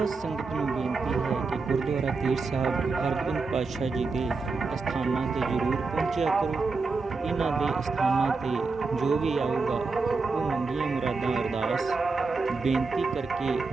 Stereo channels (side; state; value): left; quieter; 4.2 dB